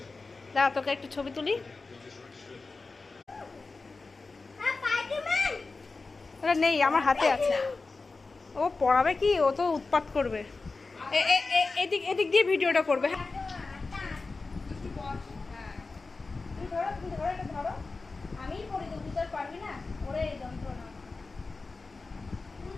দাঁড়া তোকে একটু ছবি তুলি। ওটা নেই আমার হাতে আছে। ও পড়াবে কি, ও তো উৎপাত করবে। এদিক এদিক দিয়ে ভিডিওটা করবে। ধরো আমিই পড়ি তো, তুই তো পারবি না ওরে যন্ত্রণা।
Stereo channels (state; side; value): quieter; right; 3.9 dB